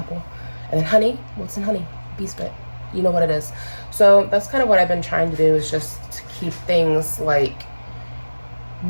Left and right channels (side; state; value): both; inverted; correlation -1.00